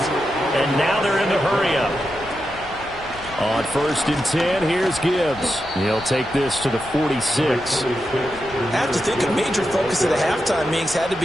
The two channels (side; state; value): left; noise; rumble, 19 dB below the sound